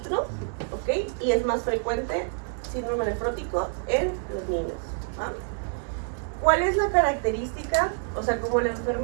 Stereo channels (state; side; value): silent; left; 60 dB below the other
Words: ok, y es más frecuente síndrome nefrótico en los niños. ¿Ah? ¿Cuál es la característica? O sea, como la